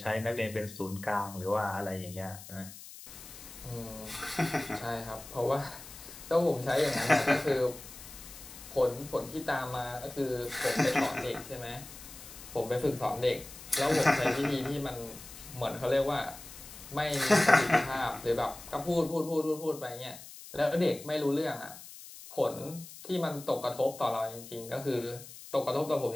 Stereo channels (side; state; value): left; noise; hiss, 15 dB below the sound